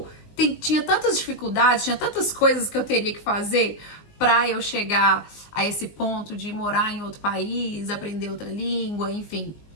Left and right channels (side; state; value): right; late; 19 ms